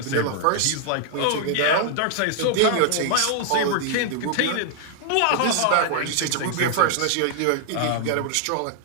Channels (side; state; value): both; different; correlation 0.00